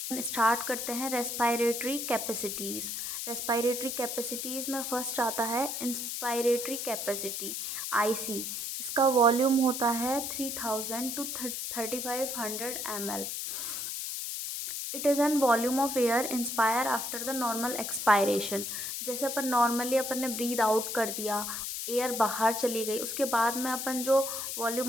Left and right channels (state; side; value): noise; left; hiss, 4 dB below the sound